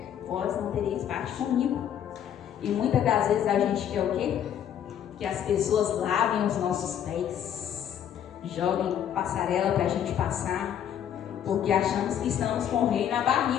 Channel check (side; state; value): right; quieter; 9.7 dB